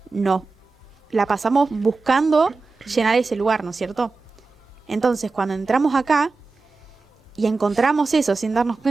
no la pasamos buscando llenar ese lugar, ¿no es cierto? Entonces, cuando entramos acá y encontramos eso sin darnos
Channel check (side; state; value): left; quieter; 3.9 dB